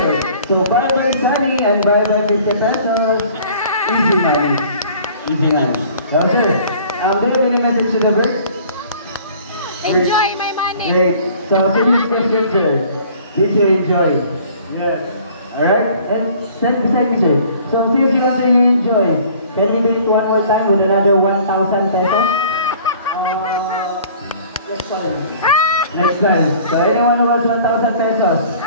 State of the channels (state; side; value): inverted; both; correlation -0.52